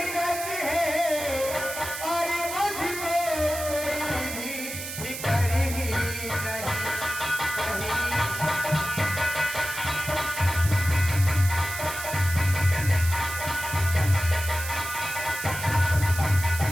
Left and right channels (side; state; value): right; noise; hiss, 8 dB below the sound